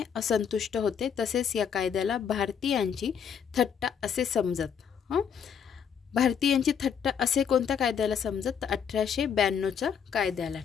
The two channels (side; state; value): right; quieter; 7.5 dB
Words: असंतुष्ट होते. तसेच या कायद्याला भारतीयांची थट्टा असे समजत. भारतीयांची थट्टा असे कोणत्या कायद्याला समजत तर 1892च्या कायद्याला.